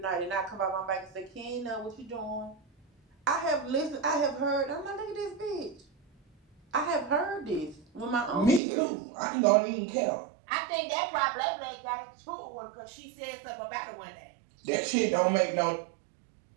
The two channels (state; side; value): drops out; left; at 8.6 s